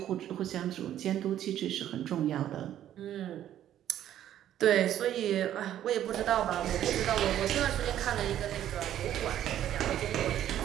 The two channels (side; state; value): left; quieter; 11.5 dB